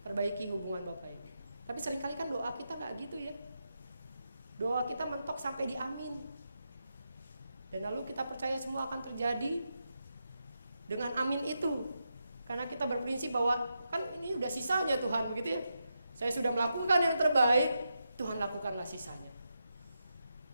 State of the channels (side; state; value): both; inverted; correlation -0.86